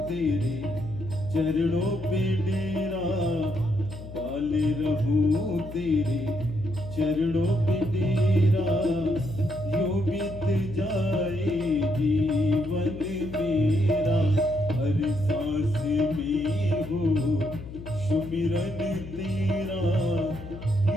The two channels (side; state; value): left; noise; hum, 13 dB below the sound